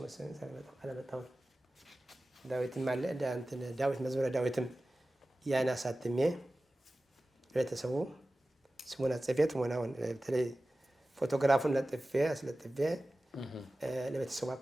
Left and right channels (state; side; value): normal; both; correlation 0.96